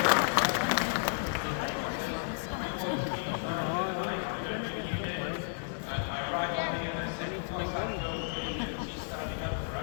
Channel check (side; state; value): right; silent; 56 dB below the other